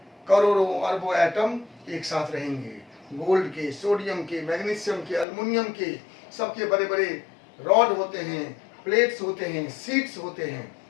करोड़ों अरबों एटम एक साथ रहेंगे। गोल्ड के, सोडियम के, मैग्नीशियम के, एल्युमिनियम के, सबके बड़े बड़े रॉड होते हैं, प्लेट्स होते हैं, सीट्स होते हैं,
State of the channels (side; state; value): right; drops out; at 5.2 s